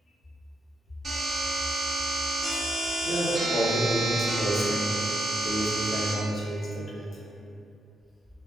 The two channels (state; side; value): normal; both; correlation 0.80